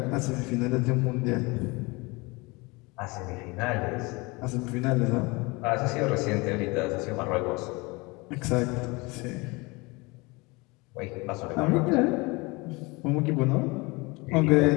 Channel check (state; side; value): quieter; right; 25.4 dB